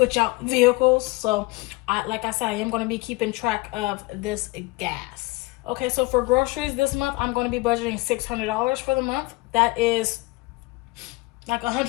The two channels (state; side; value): quieter; right; 23.1 dB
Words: out vehicles. So, like I said, I am going to be keeping track of this gas. Okay, so for groceries this month, I'm going to be budgeting $600 for the month. That is like